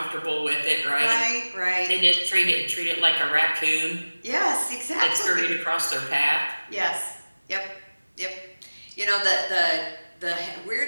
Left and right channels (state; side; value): inverted; both; correlation -1.00